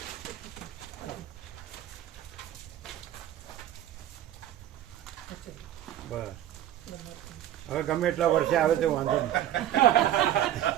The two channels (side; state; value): left; quieter; 12.0 dB